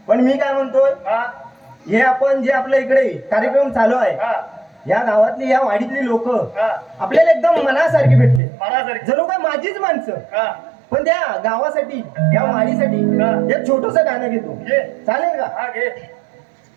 पण मी काय म्हणतोय हा, हे आपण जे आपल्या इकडे कार्यक्रम चालू आहे हा, या गावातली या वाडीतली लोक हा. आपल्याला एकदम मनासारखी भेटले मनासारखी. जणू काय माझीच माणसं हा, पण त्या गावासाठी या वाडीसाठी हा. एक छोटस गाणं घेतो घे. चालेल का हा, घे.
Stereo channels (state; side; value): drops out; left; at 8.4 s